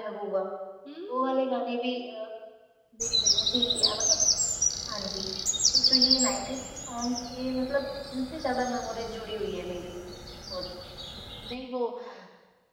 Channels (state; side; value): identical; both; correlation 1.00